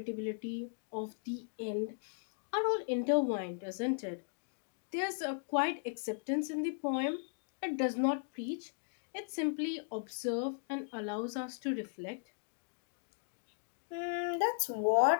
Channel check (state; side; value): silent; right; digital silence